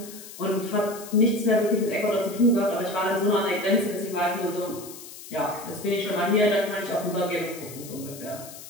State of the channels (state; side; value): noise; left; hiss, 15 dB below the sound